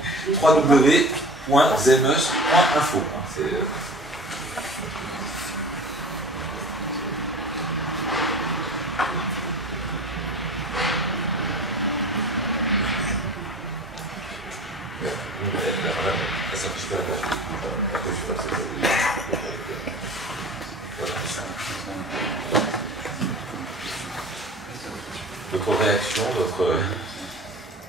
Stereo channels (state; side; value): normal; both; correlation 0.40